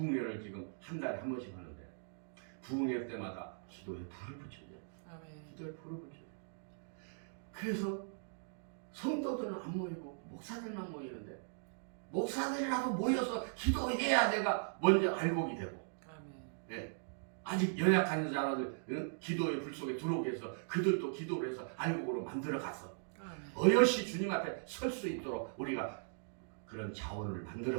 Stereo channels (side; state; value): left; silent; digital silence